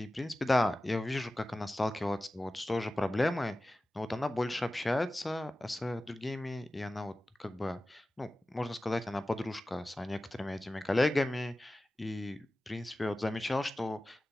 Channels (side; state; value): both; normal; correlation 0.95